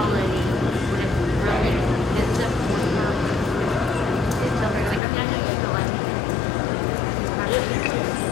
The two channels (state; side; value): drops out; right; at 5.0 s